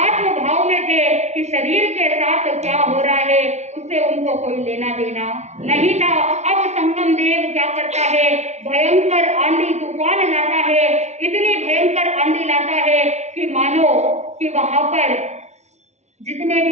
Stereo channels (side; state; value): left; late; 0.32 ms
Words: भाव में थे कि शरीर के साथ क्या हो रहा है उससे उनको कोई लेना देना नहीं था। अब संगम देव क्या करता है, भयंकर आंधी तूफान लाता है, इतनी भयंकर आंधी लाता है कि मानो कि वहां पर जितने